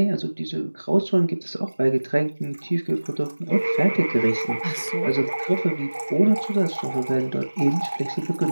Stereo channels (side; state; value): both; inverted; correlation -1.00